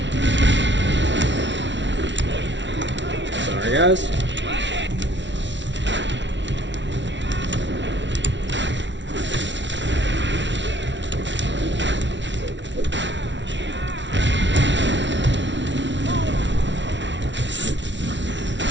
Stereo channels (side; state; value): left; late; 0.53 ms